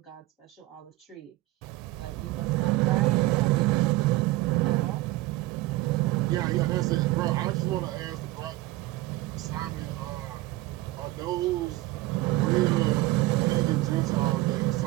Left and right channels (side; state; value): left; quieter; 18.3 dB